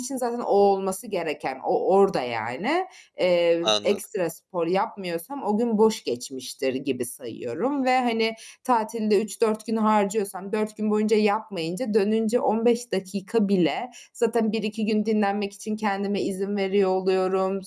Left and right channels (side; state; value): both; identical; correlation 1.00